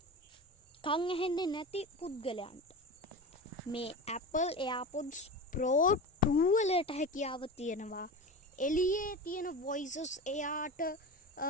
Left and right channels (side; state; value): both; normal; correlation 0.27